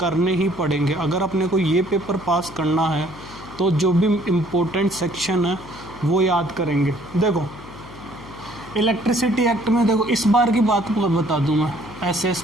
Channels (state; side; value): noise; left; hum, 17 dB below the sound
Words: ही पड़ेंगे। अगर अपने को ये पेपर पास करना है तो जो भी इम्पोर्टेंट सेक्शन है वो याद करेंगे। देखो इलेक्ट्रिसिटी एक्ट में, देखो इस बार की बात बता दूं मैं,